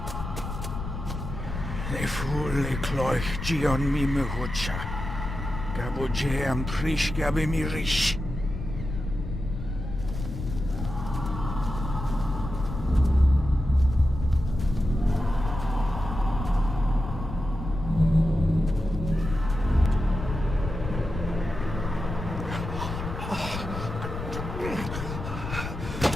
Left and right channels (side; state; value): left; noise; rumble, 6 dB below the sound